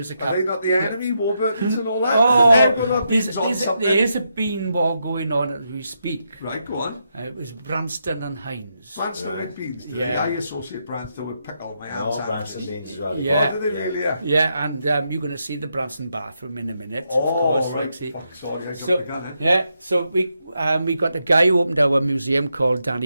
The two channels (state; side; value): inverted; both; correlation -0.82